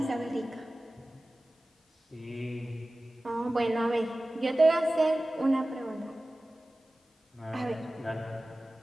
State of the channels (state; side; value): normal; both; correlation 0.97